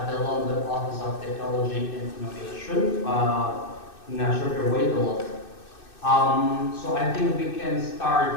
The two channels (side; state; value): right; late; 2.6 ms